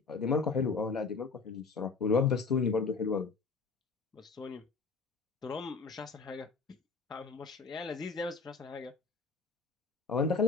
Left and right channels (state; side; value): quieter; right; 4.7 dB